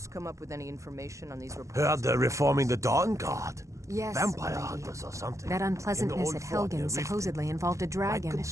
come up with any information on these reports? Heard they're reforming the Dawn Guard. Yes, Vampire lady. hunters or something. That unpleasantness at Helgen supposedly involved a dragon.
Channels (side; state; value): left; late; 0.15 ms